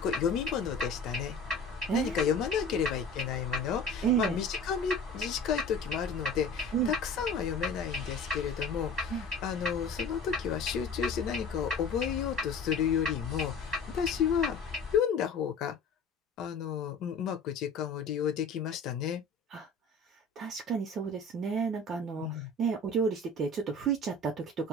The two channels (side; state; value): right; quieter; 3.1 dB